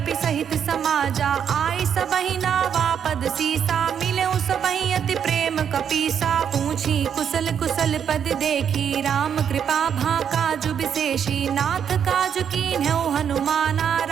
सहित समाजा। आई सबहि नावा पद सीसा, मिले सबहि अति प्रेम कपीसा। पूछी कुशल कुशल पद देखी, राम कृपा भा काजु विशेषी। नाथ काजु कीन्हु हनुमाना,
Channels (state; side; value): quieter; left; 8.2 dB